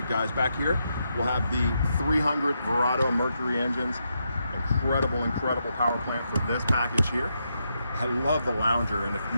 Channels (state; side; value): inverted; both; correlation -0.82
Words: guys. Back here, we'll have the 300 Verado Mercury engines. Incredible power plant for this package here. I love the lounger, and